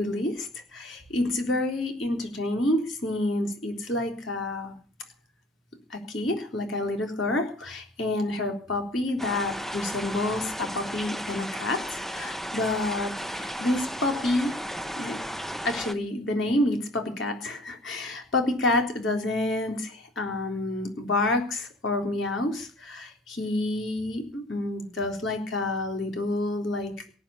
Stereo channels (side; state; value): both; normal; correlation 0.51